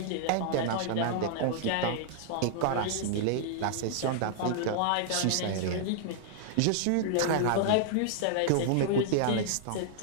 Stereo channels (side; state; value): both; different; correlation -0.01